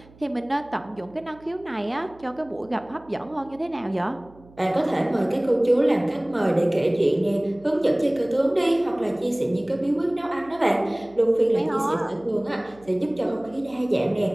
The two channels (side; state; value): right; noise; hum, 25 dB below the sound